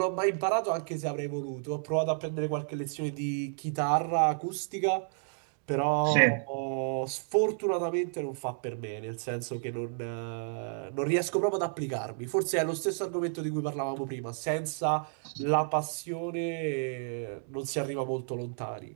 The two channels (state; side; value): silent; left; digital silence